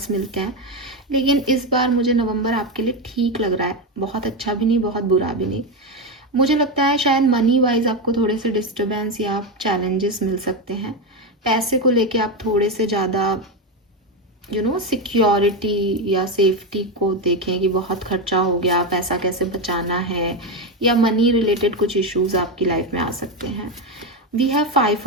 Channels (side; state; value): both; normal; correlation 0.11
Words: मिलते हैं, लेकिन इस बार मुझे नवंबर आपके लिए ठीक लग रहा है। बहुत अच्छा भी नहीं, बहुत बुरा भी नहीं। मुझे लगता है शायद मनी वाइज आपको थोड़े से डिस्टर्बेंस या चैलेंजेस मिल सकते हैं। पैसे को लेके आप थोड़े से ज़्यादा सिक्योरिटी या सेफ्टी को देखें कि बहुत खर्चा हो गया, पैसा कैसे बचाना है, या मनी रिलेटेड कुछ इश्यूज आपकी लाइफ में आ सकते हैं। We have